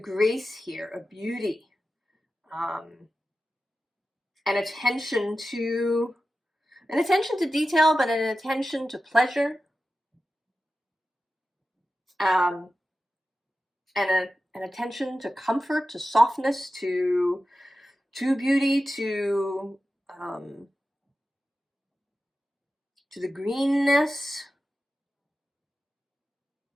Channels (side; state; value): both; normal; correlation 0.93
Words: grace here, a beauty, an attention to detail, but an attention to pleasure, and an attention to comfort, to softness, to beauty, to the greenness.